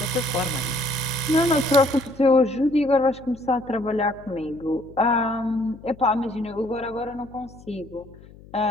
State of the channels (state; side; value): noise; left; hum, 21 dB below the sound